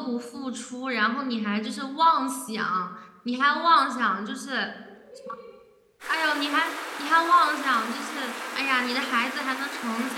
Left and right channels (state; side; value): identical; both; correlation 1.00